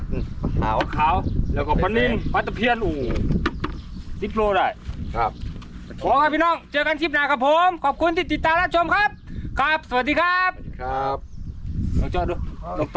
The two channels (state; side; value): identical; both; correlation 1.00